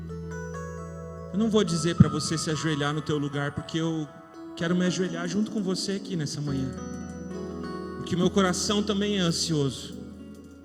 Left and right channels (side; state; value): both; identical; correlation 1.00